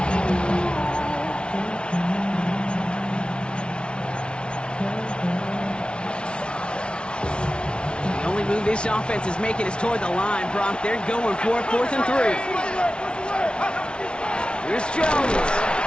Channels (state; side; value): late; right; 0.057 ms